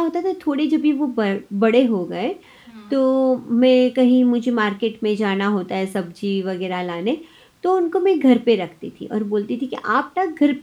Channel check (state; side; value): identical; both; correlation 1.00